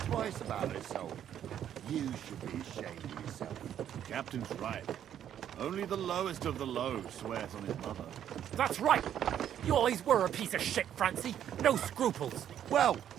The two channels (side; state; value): left; quieter; 10.1 dB